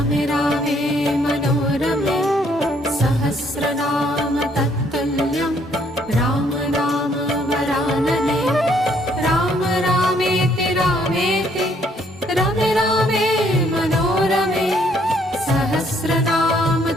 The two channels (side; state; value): both; normal; correlation 0.67